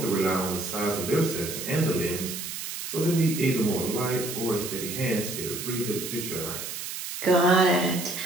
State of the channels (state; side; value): noise; right; hiss, 7 dB below the sound